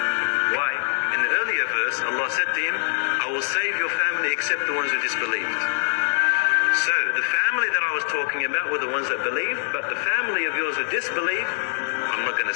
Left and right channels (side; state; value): right; silent; 63 dB below the other